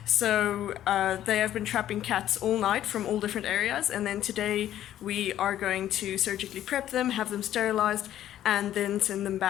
So they have been trapping cats all night from all different areas, and then today we are going to surgically prep them, have them sterilized, and then send them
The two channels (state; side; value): quieter; right; 12.0 dB